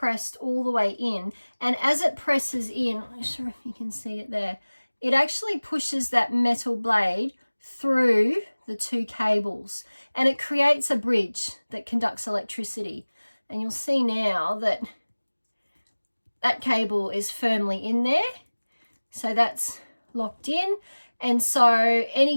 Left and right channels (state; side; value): inverted; both; correlation -1.00